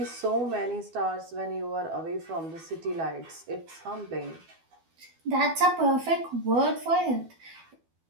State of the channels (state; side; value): late; left; 12 ms